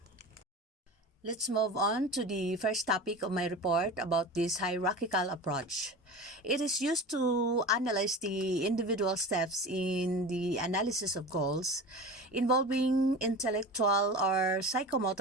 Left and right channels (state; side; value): normal; both; correlation 0.32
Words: Let's move on to the first topic of my report about this hierarchical approach. It is used to analyze the individual steps in the analysis of goals involving intellectual or